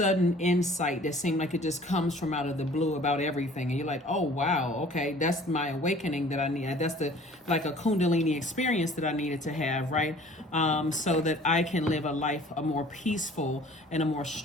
insight that seemed like it just comes from out of the blue about everything. And you're like, oh, wow, okay, that's my awakening that I need. That's like a Kundalini experience that I needed to have, right? So that I can live a more peaceful and a more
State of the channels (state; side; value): normal; both; correlation 0.50